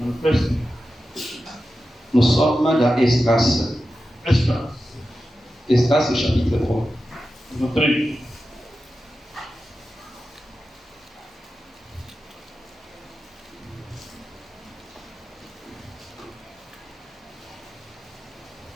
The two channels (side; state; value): both; normal; correlation 0.92